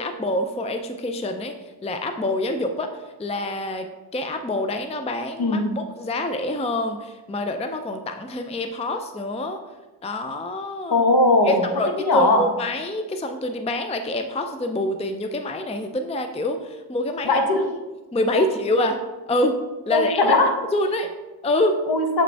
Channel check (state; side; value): normal; both; correlation 0.10